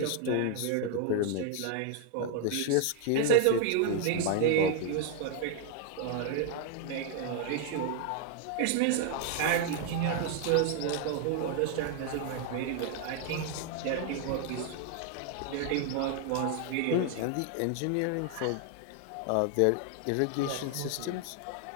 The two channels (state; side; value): different; both; correlation 0.00